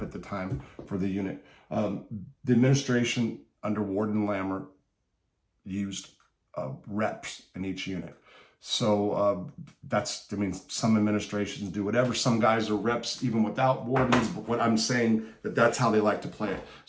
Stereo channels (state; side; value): identical; both; correlation 1.00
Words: at the time for the unit. The administration under Warden Lammer used reps in each unit. So some administrations do whatever. Some guys are reps even without wardens, but what I'm saying that's how they like to play it.